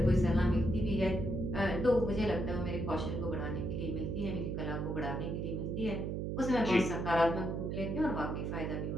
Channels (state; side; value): noise; right; hum, 2 dB below the sound